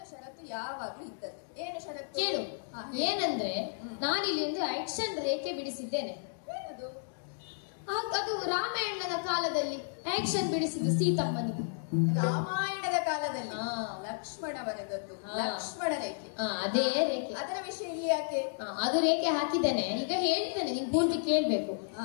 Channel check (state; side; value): silent; right; digital silence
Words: ಷರತ್ತು ಯಾವಾಗ್ಲೂ ಇದ್ದದ್ದು. ಏನು ಷರತ್ತು? ಕೇಳು. ಏನಂದ್ರೆ ನಾನಿಲ್ಲಿ ಒಂದು ಆಕ್ಷನ್ ರೇಖೆ ಬಿಡಿಸಿದ್ದೇನೆ. ಏನದು? ಅದು ರಾಮಾಯಣದ ಕಾಲದಲ್ಲಿ ಆಕ್ಷನ್ ಬಿಡಿಸಿದ್ದು ಸೀತಮ್ಮನಿಗೆ. ರಾಮಾಯಣದ ಕಾಲದಲ್ಲಿ ಲಕ್ಷ್ಮಣ ಬರೆದದ್ದು ಲಕ್ಷ್ಮಣ ರೇಖೆ. ಅದೇ ರೇಖೆ. ಅದರ ವಿಷಯ ಇಲ್ಲಿ ಯಾಕೆ? ಅದು ರೇಖೆ ಹಾಕಿದ್ದೇನೆ. ಈಗ ಹೇಳ್ತೇನೆ, ನೀನ್ ಪೂರ್ತಿ ಕೇಳ್ಬೇಕು.